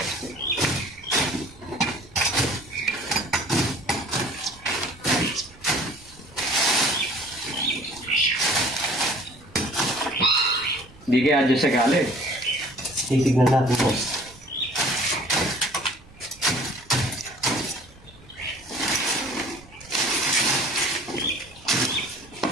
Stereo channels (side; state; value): right; noise; rumble, 25 dB below the sound